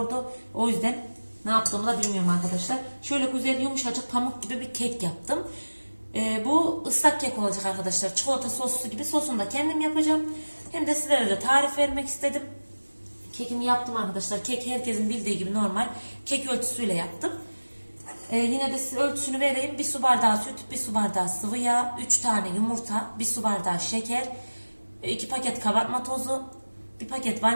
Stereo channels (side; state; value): both; inverted; correlation -1.00